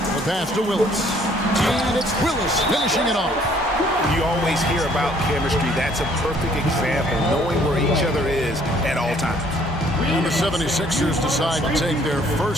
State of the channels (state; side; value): normal; both; correlation 0.61